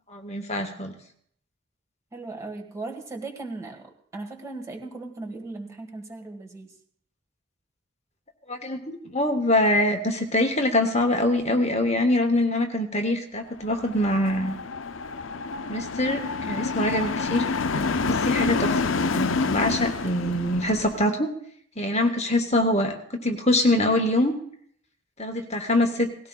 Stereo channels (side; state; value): both; normal; correlation 0.34